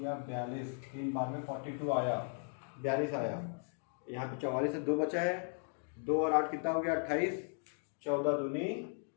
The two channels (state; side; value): silent; right; 53 dB below the other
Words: 42, 3 बार में 42 आया, 42 आया। यहाँ पे 44 से 2 बचा है, 2 और 8 कितना हो गया 28, 14 दूनी